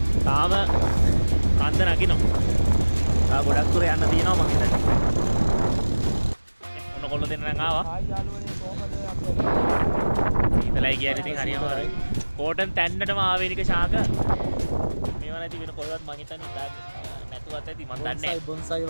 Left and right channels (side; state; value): both; inverted; correlation -1.00